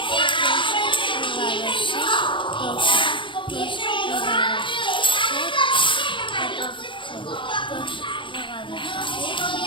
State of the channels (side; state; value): right; late; 0.24 ms